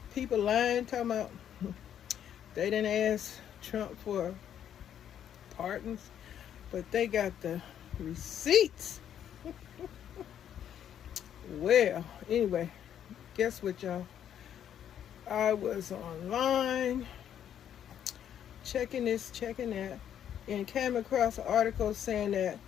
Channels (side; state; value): right; quieter; 9.7 dB